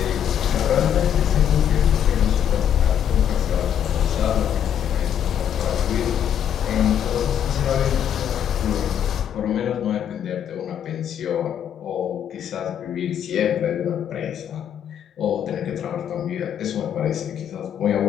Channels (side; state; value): right; quieter; 9.2 dB